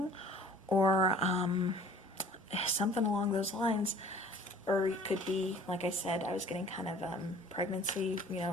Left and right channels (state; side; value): normal; both; correlation 0.50